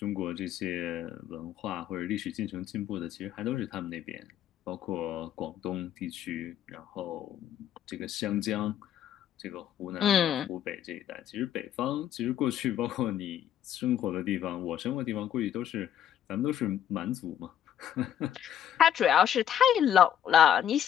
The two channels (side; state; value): right; quieter; 10.1 dB